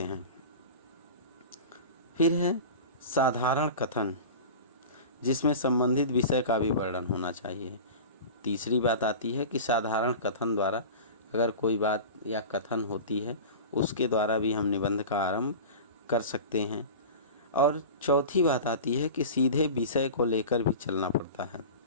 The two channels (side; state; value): both; inverted; correlation -0.33